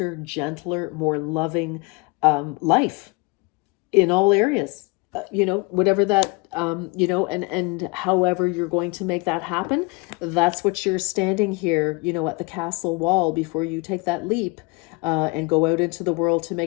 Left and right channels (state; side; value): quieter; right; 27.5 dB